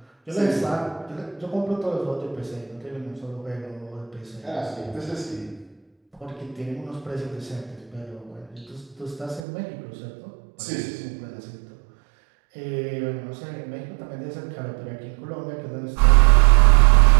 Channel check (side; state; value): left; drops out; at 9.4 s